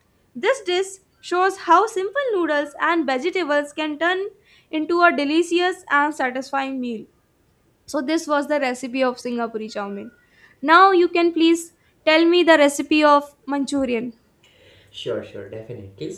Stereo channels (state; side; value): identical; both; correlation 1.00